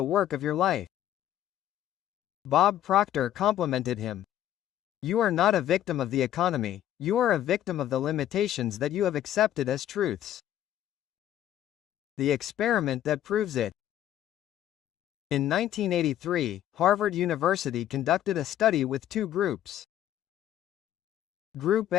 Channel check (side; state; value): right; quieter; 11.9 dB